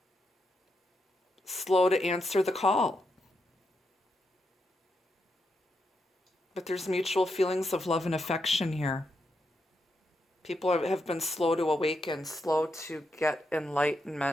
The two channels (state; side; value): normal; both; correlation 0.83